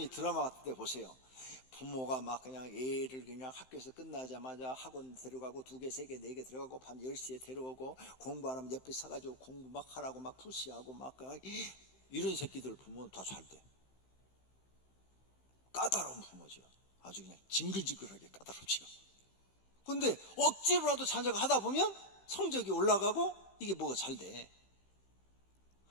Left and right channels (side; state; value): right; late; 15 ms